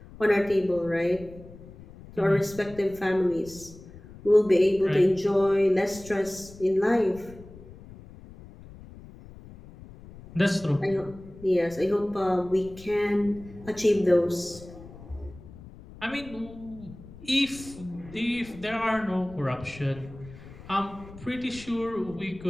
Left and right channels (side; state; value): left; noise; rumble, 18 dB below the sound